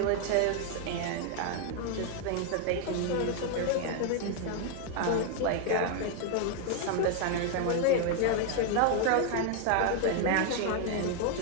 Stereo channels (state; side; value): different; both; correlation 0.01